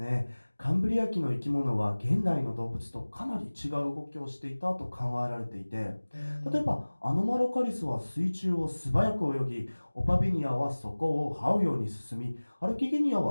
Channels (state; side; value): inverted; both; correlation -1.00